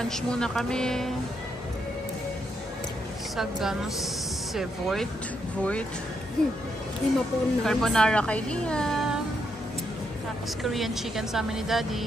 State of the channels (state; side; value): normal; both; correlation 0.79